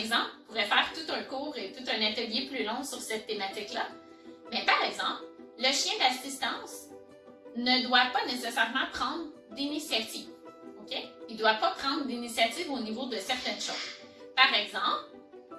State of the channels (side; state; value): both; identical; correlation 1.00